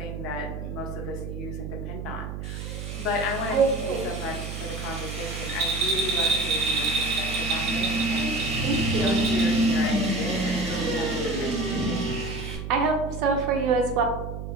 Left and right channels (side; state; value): right; noise; hum, 7 dB below the sound